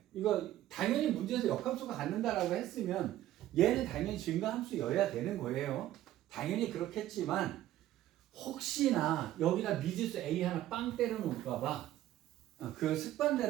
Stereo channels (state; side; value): quieter; left; 13.6 dB